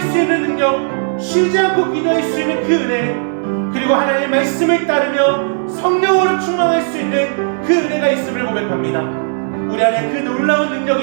수 있는 능력, 쉬지 않고 기도할 수 있는 그 은혜, 그리고 하나님의 말씀을 따르며 성령으로 충만할 수 있는 그 은혜가 있음을 고백합니다. 우리 안에 그 놀라운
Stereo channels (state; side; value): silent; left; digital silence